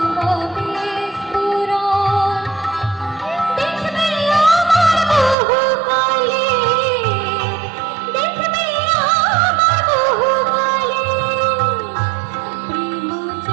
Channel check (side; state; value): left; drops out; at 5.4 s